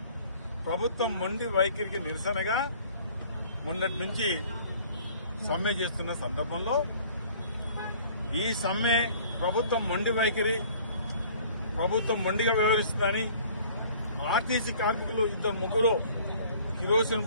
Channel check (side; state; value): both; inverted; correlation -0.52